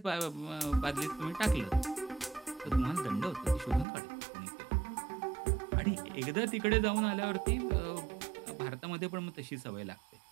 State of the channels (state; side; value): drops out; left; at 3.9 s